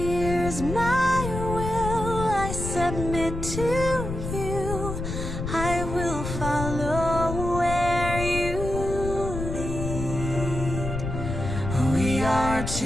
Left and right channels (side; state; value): left; noise; rumble, 5 dB below the sound